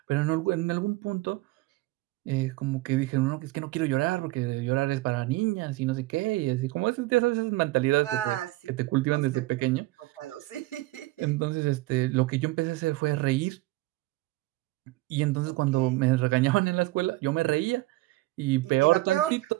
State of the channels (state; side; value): quieter; left; 19.4 dB